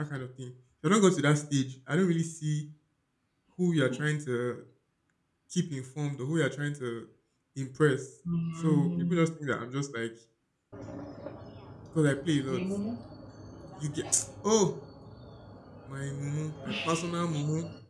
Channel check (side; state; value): both; identical; correlation 1.00